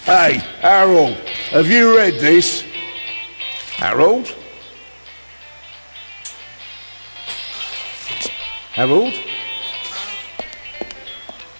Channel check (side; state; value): both; inverted; correlation -1.00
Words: Hey, Harold, have you read this? Harold? Harold?